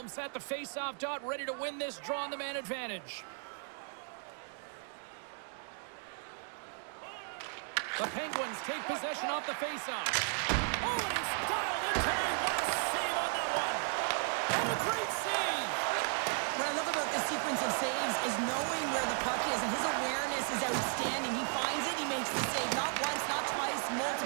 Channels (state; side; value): silent; left; 54 dB below the other